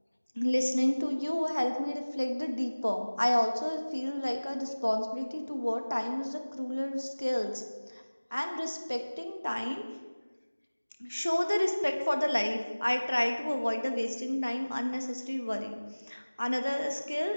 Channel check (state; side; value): inverted; both; correlation -1.00